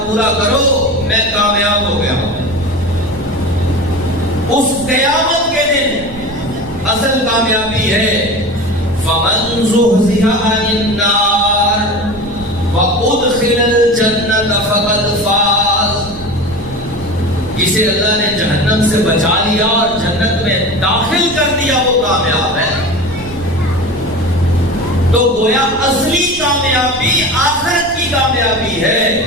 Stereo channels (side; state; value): right; noise; rumble, 16 dB below the sound